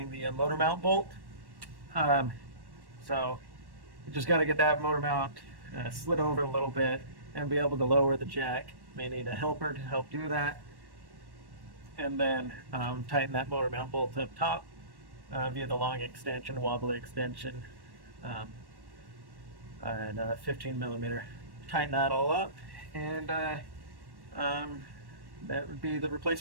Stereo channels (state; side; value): late; left; 1.1 ms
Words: the motor mount bolt. So you just got to get that motor mount slid over a little bit and be able to lower the jack. May need a helper to help do that. And then tighten that motor mount bolt up top via the long extension, wobbly extension, and 15 millimeter. Tighten that all up, and that would be the